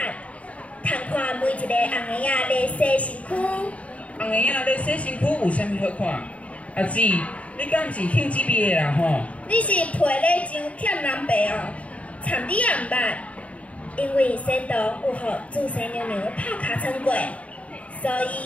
看每一个红个仔咧洗身躯。红个仔咧洗身躯有啥物好看？阿姊，你敢毋是兴这味的啦吼？你是皮咧上欠人白哦，惨你也毋捌。因为仙童有互祖先娘娘拍尻川过，所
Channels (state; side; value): late; right; 0.066 ms